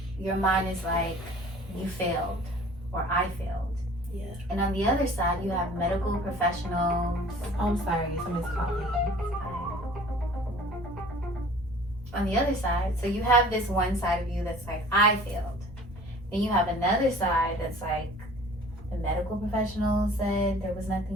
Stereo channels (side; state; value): both; normal; correlation 0.48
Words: your mind is like, you failed or I failed. Yeah. And on the other side, you have medical professionals. Oh, I'm sorry, somebody's calling. On the other side, so you have this one side of you that's like, I failed. Then you have another side that's like, the medical professional said there was